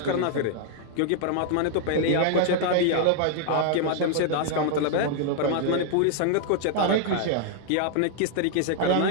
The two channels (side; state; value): both; different; correlation 0.00